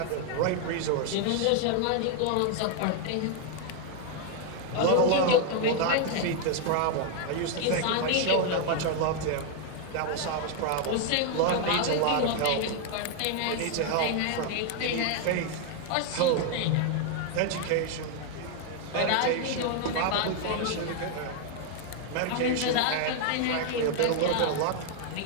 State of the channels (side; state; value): both; different; correlation 0.00